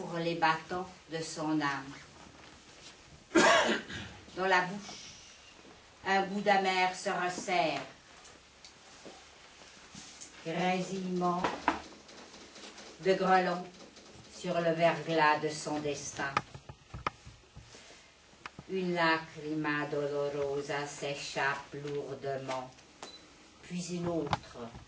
les battants de son âme. Dans la bouche, un goût d'amer se resserre. Grésillement de grelons sur le verglas de son destin. Une lacrima dolorosa s'échappe lourdement, puis une autre,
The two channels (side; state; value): both; identical; correlation 1.00